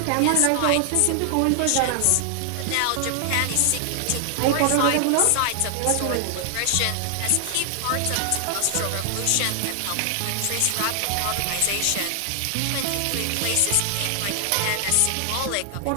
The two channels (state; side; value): different; both; correlation 0.00